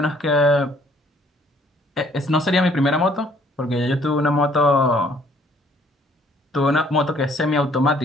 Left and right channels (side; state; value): both; normal; correlation 0.62